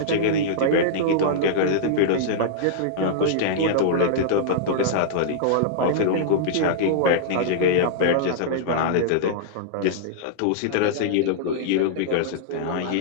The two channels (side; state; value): both; different; correlation -0.02